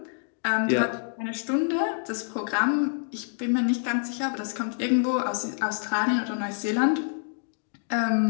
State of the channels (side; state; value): right; silent; digital silence